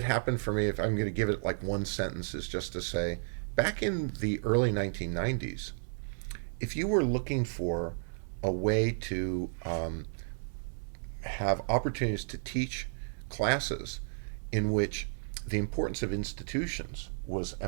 happened for me, if I'm going to give it like one sentence, is just to say, back in the early 1990s, if you were looking for a way to have opportunities to teach classes in which the importance of institutions was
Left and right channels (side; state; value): left; silent; 56 dB below the other